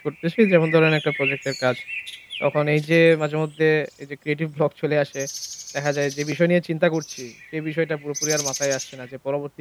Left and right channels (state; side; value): identical; both; correlation 1.00